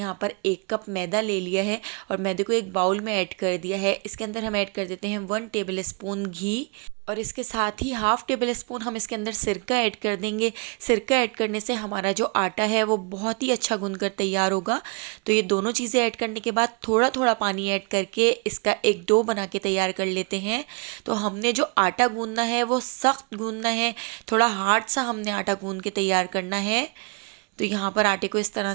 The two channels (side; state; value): left; quieter; 32.9 dB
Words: पर 1 कप मैदा ले लिया है और मैदे को एक बाउल में ऐड कर दिया है। इसके अंदर हम ऐड कर देते हैं 1 टेबल स्पून घी और इसके साथ ही हाफ़ टेबल स्पून हम इसके अंदर सिरका ऐड कर देंगे। सिरका ऐड करने से हमारा जो आटा है वो बहुत ही अच्छा गूंद कर तैयार होगा। तो ये दोनों चीज़ें ऐड करने के बाद थोड़ा थोड़ा पानी ऐड करके इसका एक डो बना के तैयार कर लेते हैं। तो हमने जो आटा गूंदना है वो सख्त गूंदना है, थोड़ा हार्ड सा हमने आटा गूंद के तैयार करना है। तो यहाँ पर आटे को इस तरह